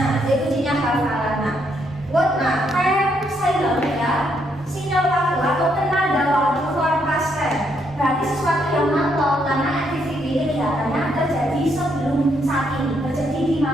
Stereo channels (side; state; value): both; normal; correlation 0.74